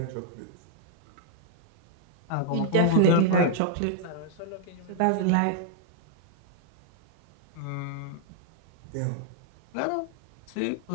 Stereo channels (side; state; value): both; different; correlation -0.01